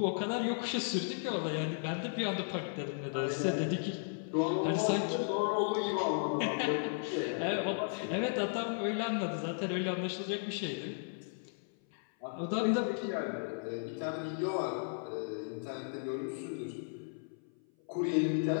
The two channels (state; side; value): silent; right; 54 dB below the other